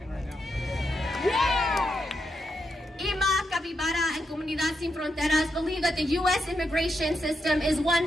right now. Yeah! IMA, Capybara, and Comunidad Sin Fronteras believe that the U.S. immigration system is one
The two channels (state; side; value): normal; both; correlation 0.83